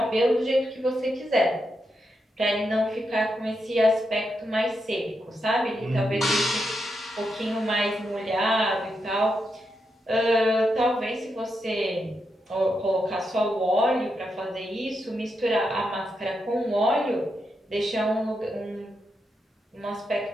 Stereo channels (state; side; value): normal; both; correlation 0.84